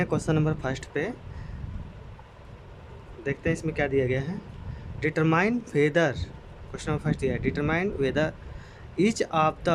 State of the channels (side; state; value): both; identical; correlation 1.00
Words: क्वेश्चन नंबर फर्स्ट पे। देखते हैं इसमें क्या दिया गया है। Determine whether, question number first दिया है, determine whether each of